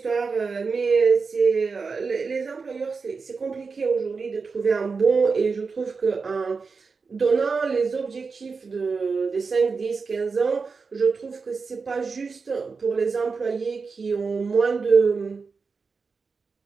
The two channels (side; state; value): left; quieter; 4.8 dB